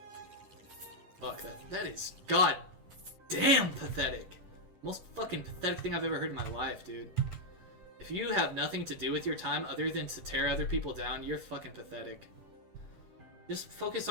Fuck, that is goddamn pathetic. Most fucking pathetic thing I've ever heard in my life, dude. If you have nothing to do with your time other than to tear other people down, you're fucking pathetic. Just focus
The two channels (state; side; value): late; left; 10 ms